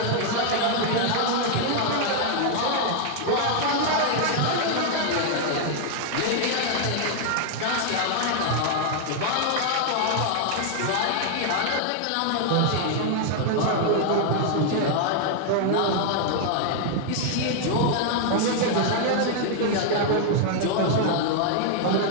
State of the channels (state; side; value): different; both; correlation 0.00